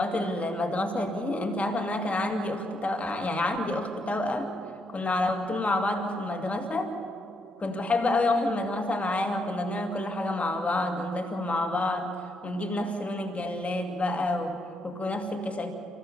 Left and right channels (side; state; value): both; normal; correlation 0.77